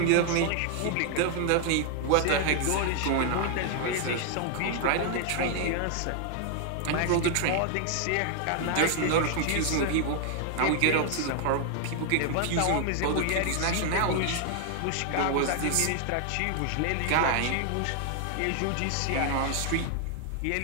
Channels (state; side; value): different; both; correlation 0.00